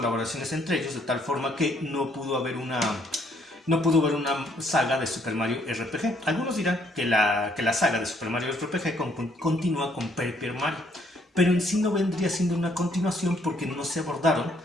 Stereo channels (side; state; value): both; normal; correlation 0.67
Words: entre ellos, de tal forma que no pudo haber una saga de Super Mario RPG. Algunos dirán que la saga de Super Mario RPG continúa con Paper Mario, pero en sí no vendría siendo una continuación porque no se abordaron